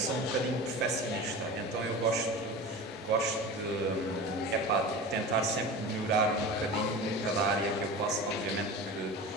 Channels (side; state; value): both; normal; correlation 0.32